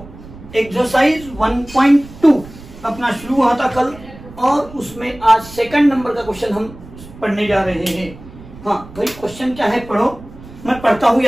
exercise 1.2 अपना शुरू हुआ था कल और उसमें आज सेकंड नंबर का क्वेश्चन हम पढ़ने जा रहे हैं। हाँ भाई, क्वेश्चन क्या है पढ़ो, मैं पढ़ता हूं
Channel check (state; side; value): noise; right; rumble, 18 dB below the sound